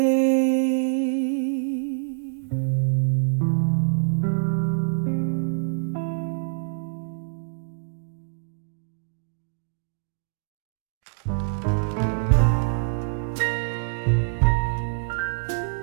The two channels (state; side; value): silent; left; digital silence